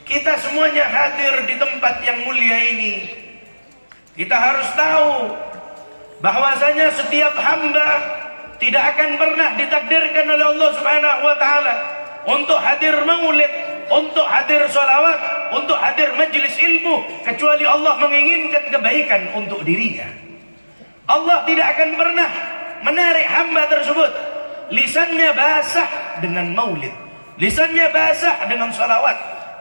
Kita semuanya hadir di tempat yang mulia ini. Kita harus tahu bahwasanya setiap hamba tidak akan pernah ditakdirkan oleh Allah Subhanahu wa taala untuk hadir maulid, untuk hadir sholawat, untuk hadir majlis ilmu, kecuali Allah menginginkan kebaikan untuk dirinya. Allah tidak akan pernah menarik hamba tersebut. Lisannya basah dengan maulid, lisannya basah dengan sholawat,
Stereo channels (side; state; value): both; inverted; correlation -1.00